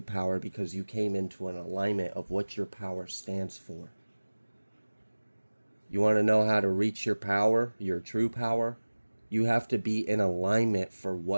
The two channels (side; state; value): both; inverted; correlation -1.00